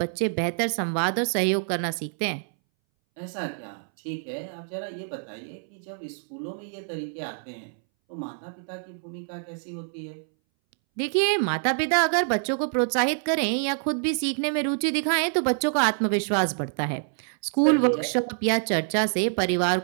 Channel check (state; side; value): silent; left; 61 dB below the other